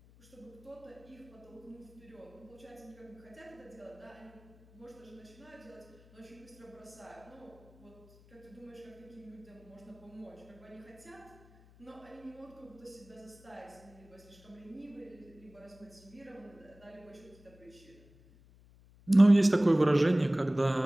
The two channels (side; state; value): left; noise; hum, 25 dB below the sound